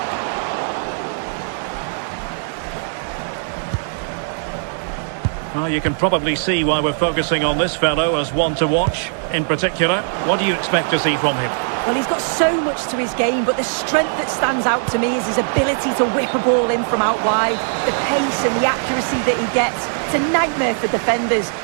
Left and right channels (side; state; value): left; silent; digital silence